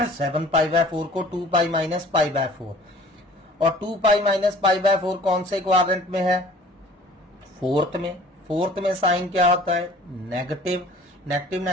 7π/4 को 2π माइनस π/4, और 2π माइनस π/4 कौन से क्वाड्रेंट में है? फोर्थ में। फोर्थ में साइन क्या होता है? नेगेटिव। नेगेटिव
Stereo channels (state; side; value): normal; both; correlation 0.49